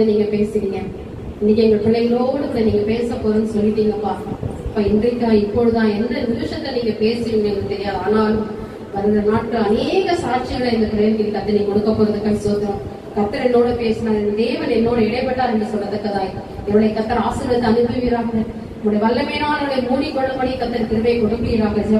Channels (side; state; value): both; identical; correlation 1.00